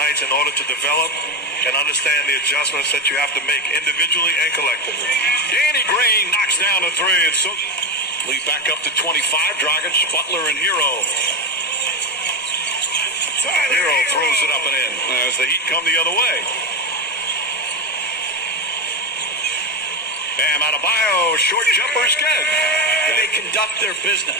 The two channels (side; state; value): both; normal; correlation 0.14